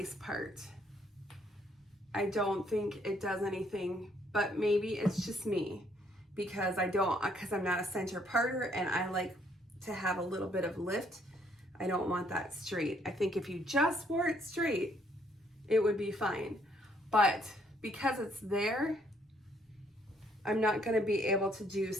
part. I don't think it does anything, but maybe it's just me because I'm not a center parter and I like to have a little bit of lift. I don't want that straight. I think if you just wore it straight, it would be fine. But because it's there, I'm not going to be able to do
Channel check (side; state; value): both; normal; correlation 0.67